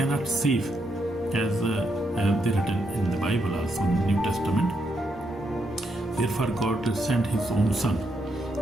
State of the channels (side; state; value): both; normal; correlation 0.79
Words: save, as they written in the Bible, also in the New Testament. Therefore God sent His own Son